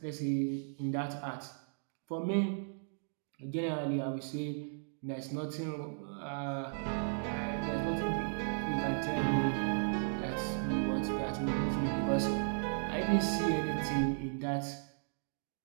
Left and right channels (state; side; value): silent; left; digital silence